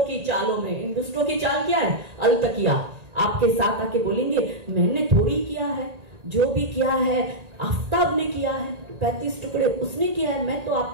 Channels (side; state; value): left; late; 1.8 ms